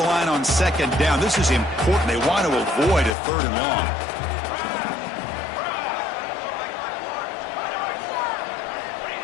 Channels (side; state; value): right; drops out; at 3.2 s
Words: line on second down. This is important. They want to avoid a third and long.